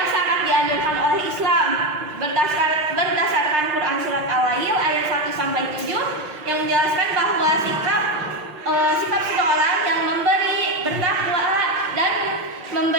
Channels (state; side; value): late; left; 6.6 ms